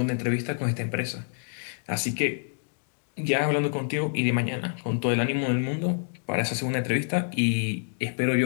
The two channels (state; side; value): silent; right; digital silence